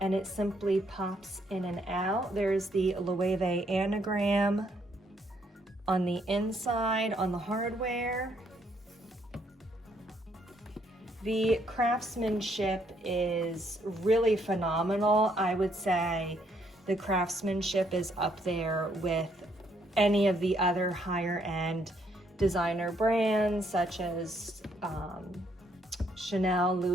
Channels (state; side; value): normal; both; correlation 0.71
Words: and it simply pops in and out. There's the Loewe anagram on the inside on the hardware. The craftsmanship is really phenomenal. I would say the craftsmanship is up there with any of the other higher end designer brands such as Chanel,